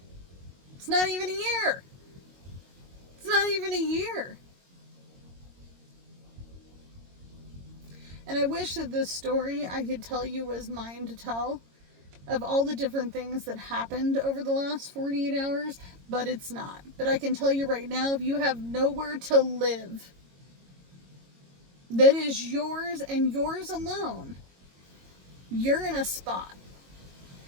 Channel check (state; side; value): late; left; 22 ms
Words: It's not even a year. It's not even a year. And I wish that this story I could tell you was mine to tell. of all the different things that happened over the last 48 hours, but it's not. But I can tell you right now, if you have nowhere to live that is yours and yours alone, you're in a spot.